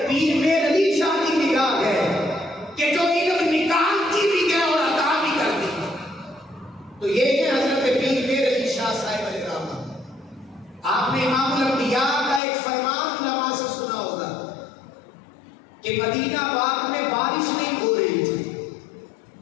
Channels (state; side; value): drops out; right; at 12.4 s